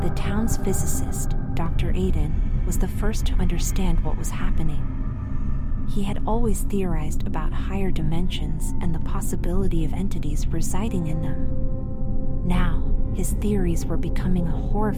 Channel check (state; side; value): identical; both; correlation 1.00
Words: The town's physicist, Dr. Aiden, was the first to understand what was happening. He had always theorized about higher dimensions and the possibility of entities residing in them. Now, his theories were becoming a